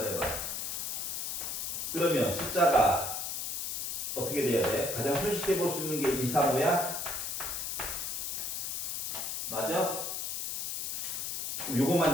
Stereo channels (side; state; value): left; noise; hiss, 3 dB below the sound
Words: 해봐. 그러면 숫자가 어떻게 돼야 돼? 가장 손쉽게 볼 수 있는 게 2, 3, 5야? 맞아? 그럼